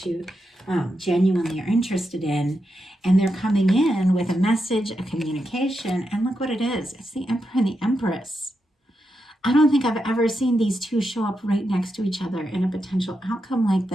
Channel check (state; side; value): normal; both; correlation 0.86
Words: you genuinely are interested in. And they're coming in with a message, a communication, and look what it is. It's the Emperor and the Empress. I don't think I've ever seen these two show up right next to each other in a potential outcome like